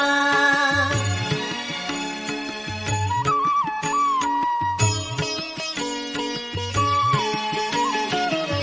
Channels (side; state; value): both; identical; correlation 1.00